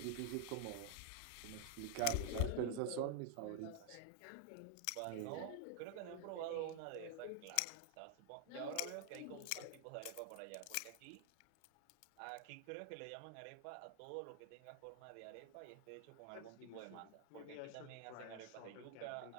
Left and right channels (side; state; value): both; different; correlation 0.00